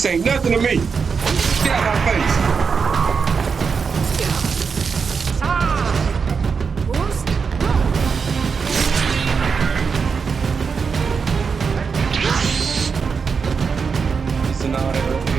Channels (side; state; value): left; quieter; 5.6 dB